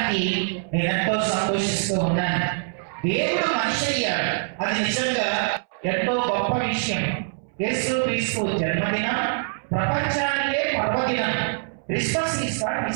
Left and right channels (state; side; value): silent; left; 63 dB below the other